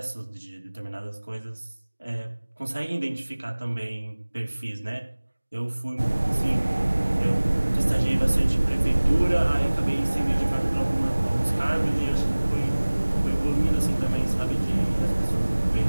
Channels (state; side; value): inverted; both; correlation -1.00